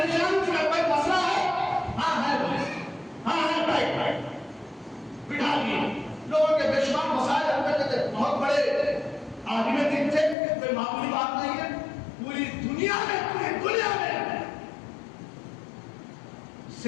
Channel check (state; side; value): drops out; right; at 10.4 s